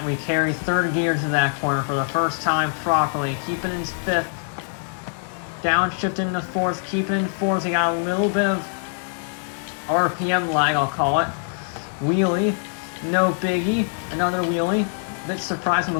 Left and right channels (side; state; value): right; silent; digital silence